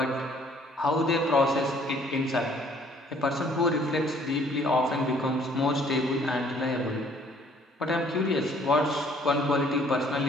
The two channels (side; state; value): both; normal; correlation 0.59